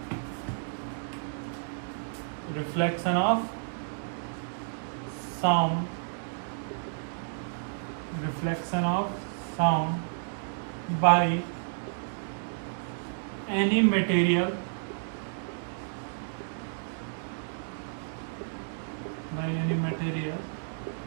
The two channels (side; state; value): left; silent; digital silence